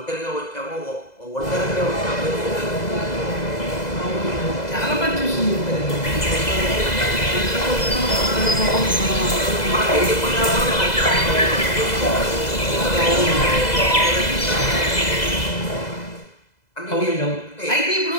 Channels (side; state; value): right; late; 2.0 ms